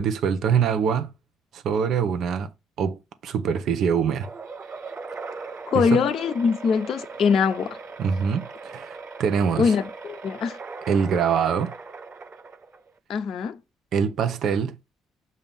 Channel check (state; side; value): normal; both; correlation 0.65